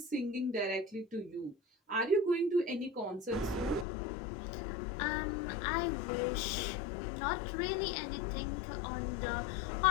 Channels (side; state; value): right; drops out; at 3.9 s